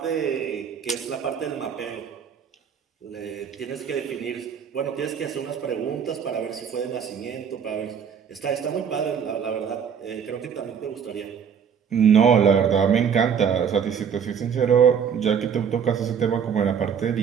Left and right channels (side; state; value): left; quieter; 7.4 dB